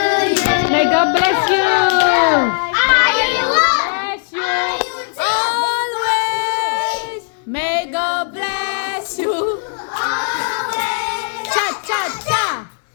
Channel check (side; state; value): right; silent; digital silence